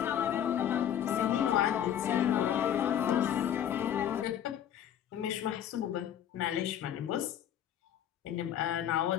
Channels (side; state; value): right; quieter; 10.0 dB